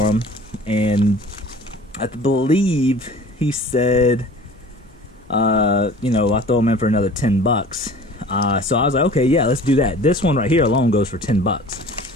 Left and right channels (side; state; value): both; normal; correlation 0.45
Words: them, and I believe he said, you know, I throw them in for another 10 bucks. So I was like, okay, yeah, let's do that. This one right here alone goes for 10 bucks.